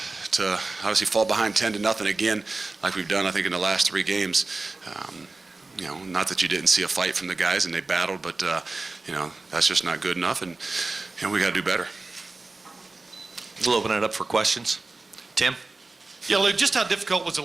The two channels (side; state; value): left; quieter; 3.5 dB